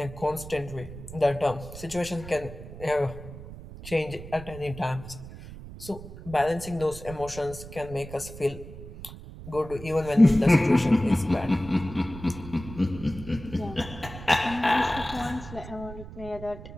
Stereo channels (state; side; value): noise; right; rumble, 13 dB below the sound